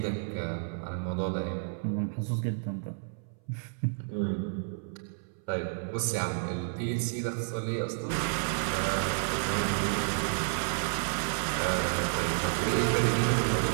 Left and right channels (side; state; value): left; silent; 57 dB below the other